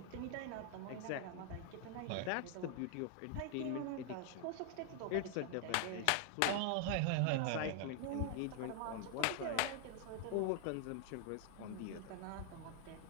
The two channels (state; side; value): different; both; correlation 0.00